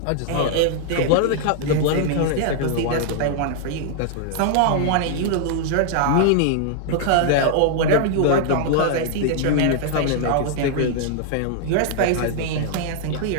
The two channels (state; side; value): different; both; correlation -0.01